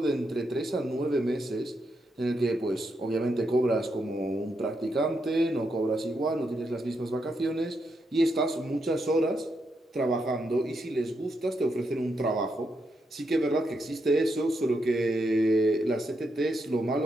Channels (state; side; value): normal; both; correlation 0.81